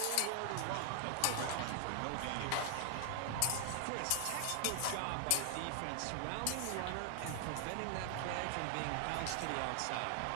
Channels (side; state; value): both; different; correlation 0.00